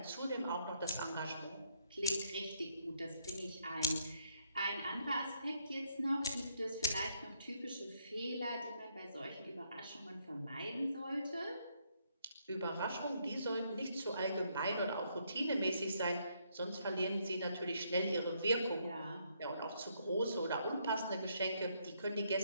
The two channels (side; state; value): both; inverted; correlation -0.72